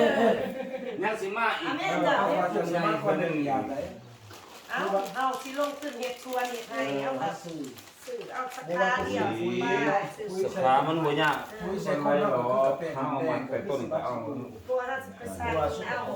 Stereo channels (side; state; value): both; identical; correlation 1.00